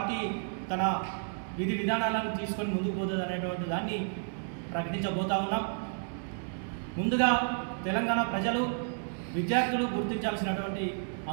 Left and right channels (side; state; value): left; silent; digital silence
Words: తన విధి విధానాలను తీసుకొని ముందుకు పోతుంది అనేటువంటి దాన్ని ప్రకటించబోతా ఉన్నాం. ముందుగా తెలంగాణ ప్రజలు, విద్యార్థులు గుర్తించాల్సినటువంటి